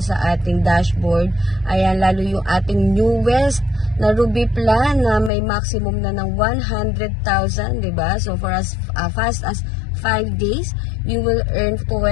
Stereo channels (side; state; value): right; drops out; at 5.3 s